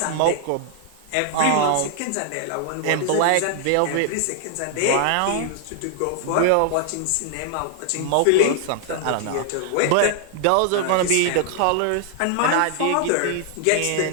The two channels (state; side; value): different; both; correlation 0.00